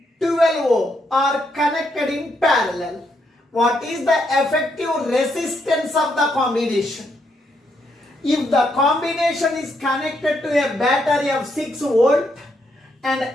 12 ohm are connected in parallel. What is the effective resistance of the combination? If the combination is connected to a battery of 6 volt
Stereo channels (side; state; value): both; normal; correlation 0.77